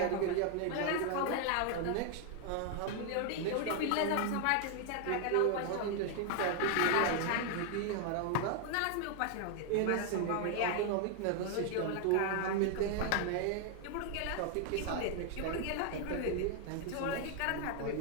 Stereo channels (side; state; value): both; different; correlation 0.00